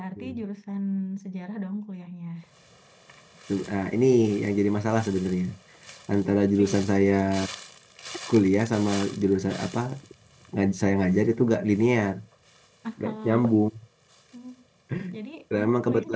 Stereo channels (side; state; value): both; identical; correlation 1.00